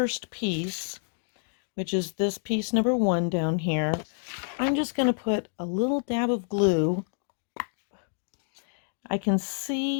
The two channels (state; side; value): silent; right; 59 dB below the other